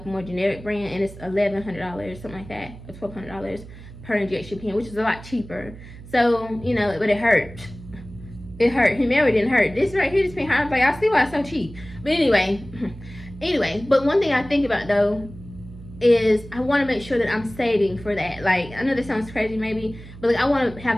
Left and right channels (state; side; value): noise; right; hum, 16 dB below the sound